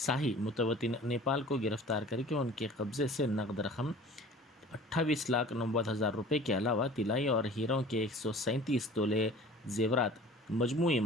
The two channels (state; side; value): normal; both; correlation 0.44